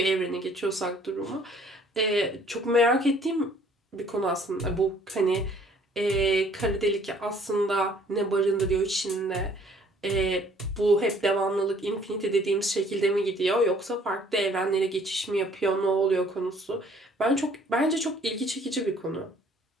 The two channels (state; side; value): normal; both; correlation 0.58